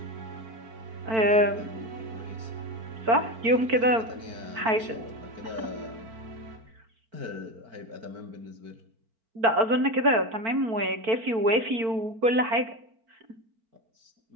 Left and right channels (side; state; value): left; late; 4.5 ms